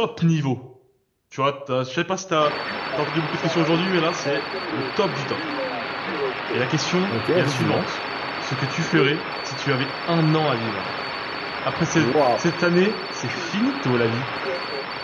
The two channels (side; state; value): both; identical; correlation 1.00